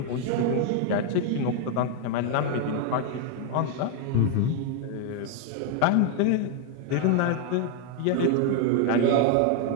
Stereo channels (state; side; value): different; both; correlation 0.01